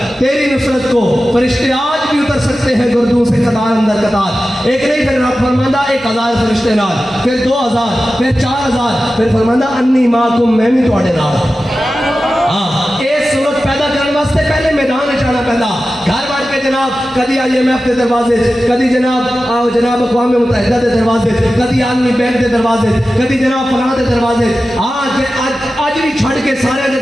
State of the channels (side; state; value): both; normal; correlation 0.94